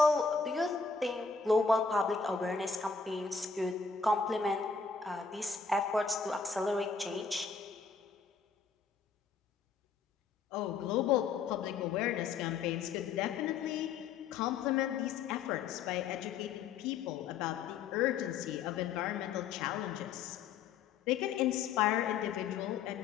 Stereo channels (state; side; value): quieter; right; 5.4 dB